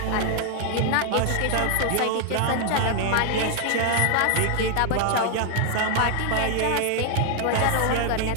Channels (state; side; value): different; both; correlation 0.00